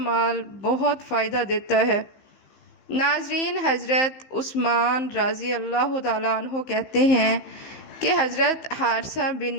بہت فائدہ دیتا ہے۔ ناظرین، حضرت عثمان رضی اللہ تعالیٰ عنہ کہتے ہیں کہ حضرت حارثہ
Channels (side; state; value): right; late; 15 ms